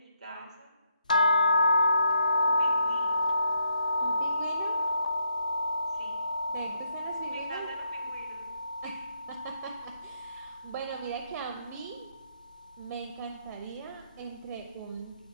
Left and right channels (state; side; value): inverted; both; correlation -0.78